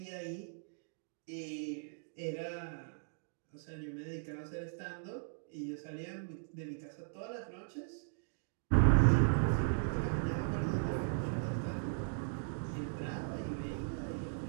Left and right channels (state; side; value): silent; left; digital silence